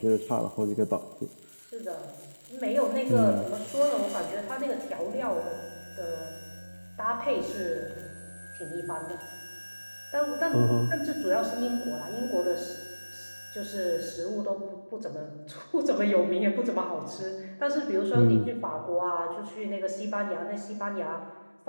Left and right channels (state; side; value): inverted; both; correlation -1.00